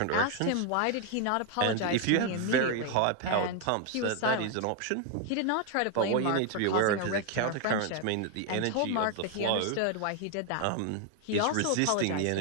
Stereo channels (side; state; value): both; different; correlation 0.00